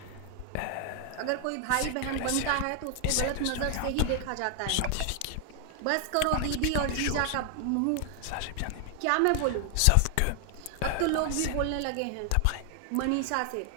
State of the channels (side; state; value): both; different; correlation 0.00